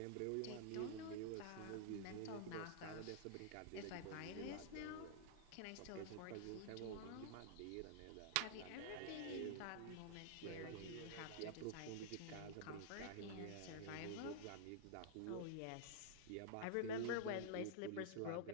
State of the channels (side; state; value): both; different; correlation -0.01